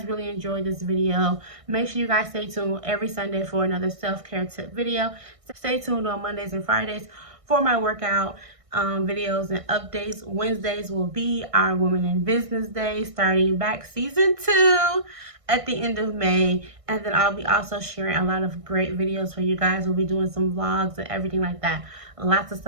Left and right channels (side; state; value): left; late; 1.6 ms